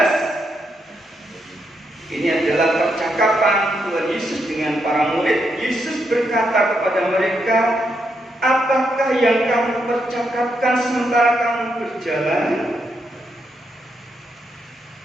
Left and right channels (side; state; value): both; normal; correlation 0.80